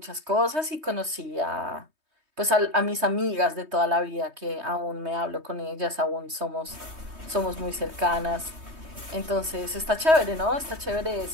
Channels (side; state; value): left; late; 3.2 ms